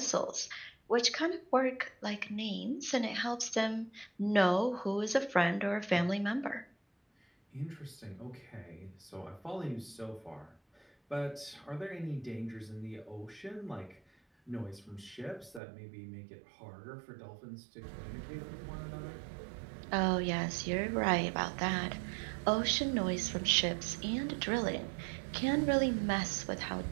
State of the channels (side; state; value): left; drops out; at 15.6 s